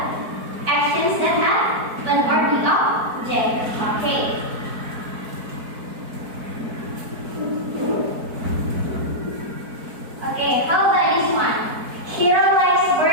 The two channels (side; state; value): left; late; 4.5 ms